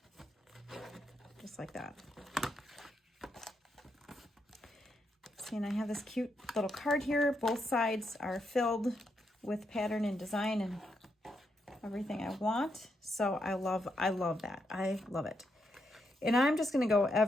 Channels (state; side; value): normal; both; correlation 0.81